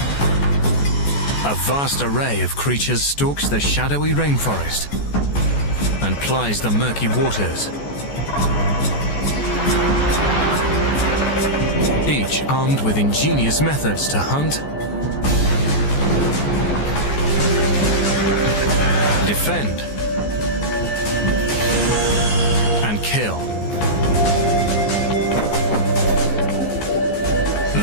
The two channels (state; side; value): late; right; 14 ms